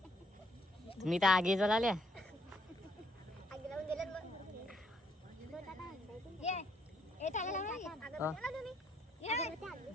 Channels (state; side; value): normal; both; correlation 0.71